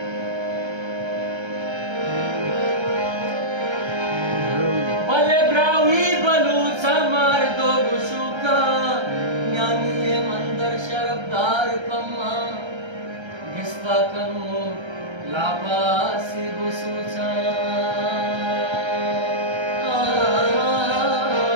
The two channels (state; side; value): late; left; 1.3 ms